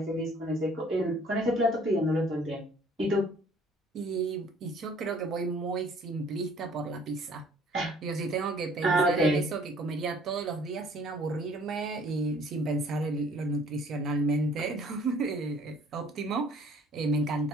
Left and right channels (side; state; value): both; normal; correlation 0.56